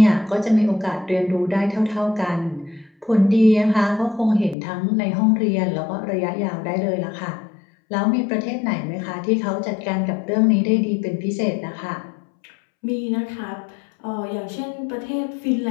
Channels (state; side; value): drops out; right; at 4.5 s